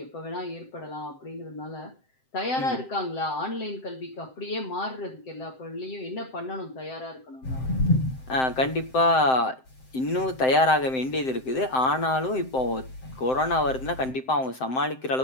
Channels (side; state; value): right; late; 7.7 ms